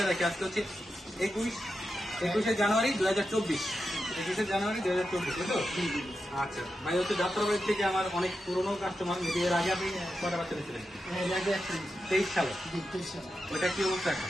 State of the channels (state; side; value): normal; both; correlation 0.89